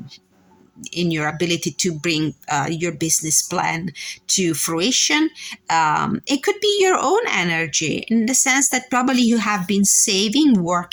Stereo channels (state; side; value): identical; both; correlation 1.00